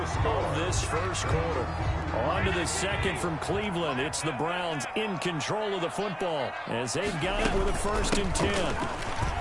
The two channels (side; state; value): both; identical; correlation 1.00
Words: of this first quarter. On to the 2nd from Cleveland. It's the Browns in control of the football as they've got it with a 1st and 10.